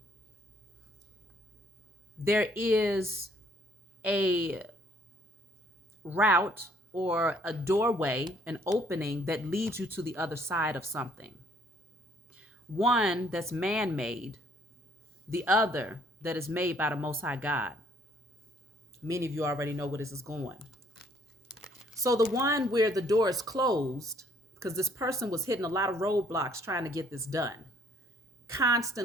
There is a route or a doorway, an opening that leads you to the other side of something. One that's man-made, the other that is made by the Most High God. Many of you already know where this is going. So the one where the door is closed, because this person was hitting a lot of roadblocks trying to get this done,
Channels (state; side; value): normal; both; correlation 0.63